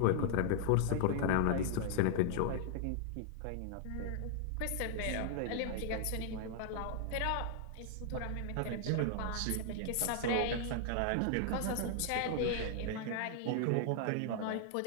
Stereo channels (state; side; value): different; both; correlation 0.00